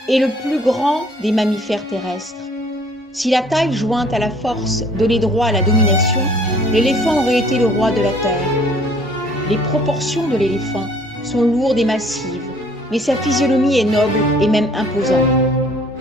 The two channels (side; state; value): both; normal; correlation 0.57